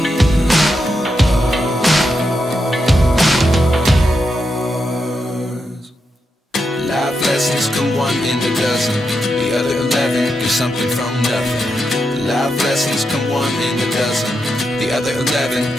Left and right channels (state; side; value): normal; both; correlation 0.85